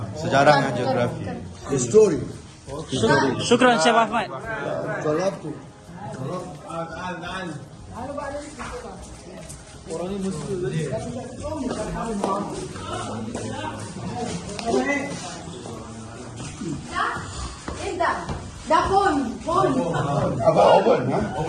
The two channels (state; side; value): identical; both; correlation 1.00